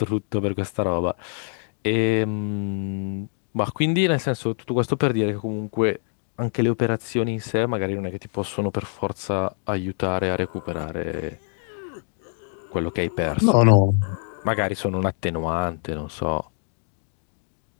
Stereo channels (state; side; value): silent; right; 62 dB below the other